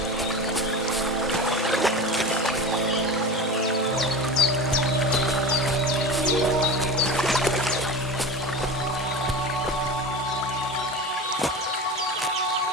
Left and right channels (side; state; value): both; normal; correlation 0.29